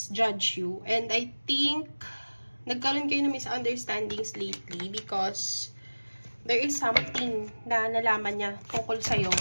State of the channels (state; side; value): inverted; both; correlation -1.00